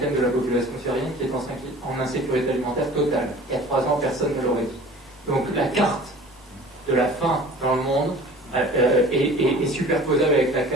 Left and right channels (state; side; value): normal; both; correlation 0.45